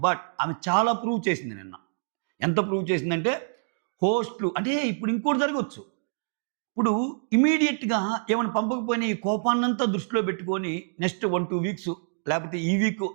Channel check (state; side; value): silent; left; digital silence